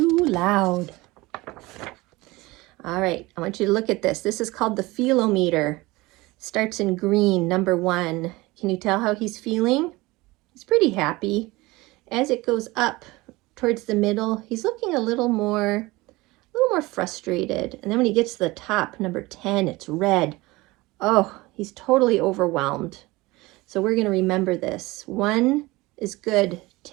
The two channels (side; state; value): left; quieter; 21.4 dB